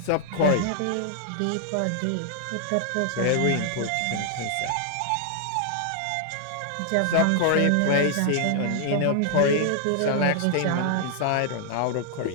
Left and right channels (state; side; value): different; both; correlation 0.00